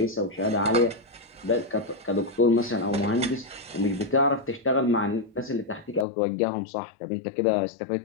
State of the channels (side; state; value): right; drops out; at 6.1 s